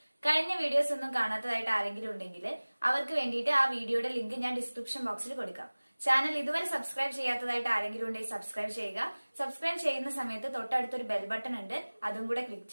കഴിഞ്ഞ വീഡിയോസ് ഒന്നും കാണാത്തതായിട്ട് ആരെങ്കിലും ഉണ്ടെങ്കിൽ അവർക്ക് വേണ്ടിയിട്ട് ആ വീഡിയോയുടെ ലിങ്ക് ഞാൻ ഡിസ്ക്രിപ്ഷൻ ബോക്സിൽ കൊടുക്കാം. ചാനൽ ഇതുവരെ സബ്സ്ക്രൈബ് ചെയ്യാത്തതായിട്ട് ആരെങ്കിലും ഉണ്ടെങ്കിൽ സബ്സ്ക്രൈബ് ചെയ്യുക. സബ്സ്ക്രൈബ് ചെയ്യുന്ന സമയത്ത് തൊട്ടടുത്തൊരു ബെൽ ബട്ടൺ ഉണ്ട്, അതും കൂടെ ക്ലിക്ക്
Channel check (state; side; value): inverted; both; correlation -1.00